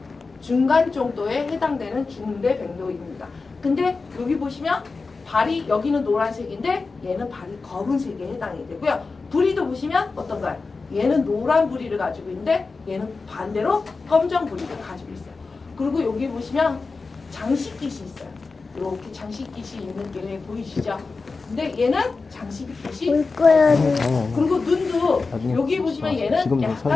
정도에 해당되는 중대백로입니다. 근데 여기 보시면 발이 여기는 노란색인데 얘는 발이 검은색에 해당이 되고요. 부리도 보시면 어떤가요? 얘는 노란 부리를 가지고 있는데 얘는 반대로 검정 부리를 가지고 있어요. 그리고 여기 보시면 장식깃이 있어요. 이렇게 장식깃이 있는 게 보이시죠? 근데 얘는 장식깃이 올 거야. 그리고 눈도 나중에 여기 보시면 얘는 지금도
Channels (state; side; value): quieter; right; 4.1 dB